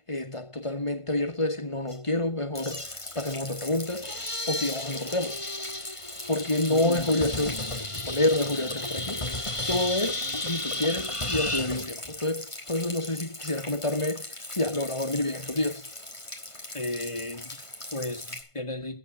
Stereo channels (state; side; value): late; right; 1.5 ms